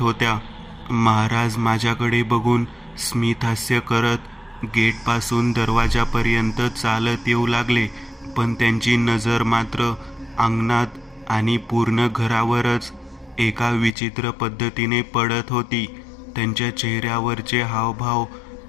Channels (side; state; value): right; drops out; at 14.0 s